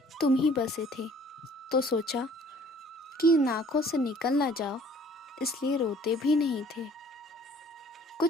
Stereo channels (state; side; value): normal; both; correlation 0.55